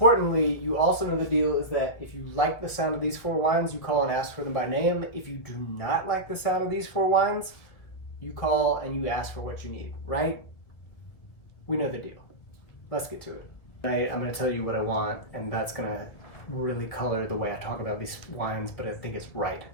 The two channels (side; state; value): right; late; 2.0 ms